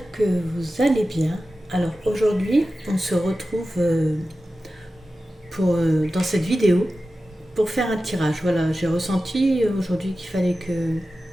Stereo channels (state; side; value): normal; both; correlation 0.94